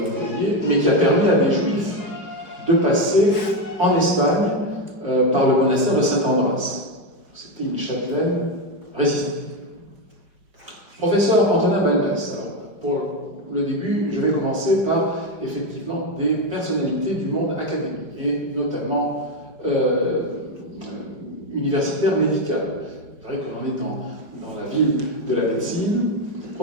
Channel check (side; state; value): left; late; 5.0 ms